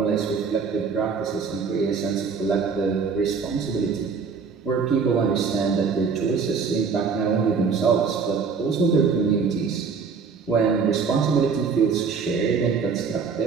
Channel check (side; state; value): left; quieter; 5.6 dB